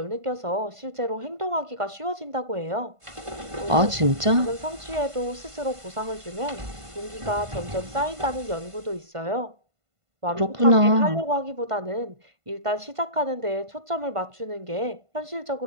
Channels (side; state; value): left; late; 1.5 ms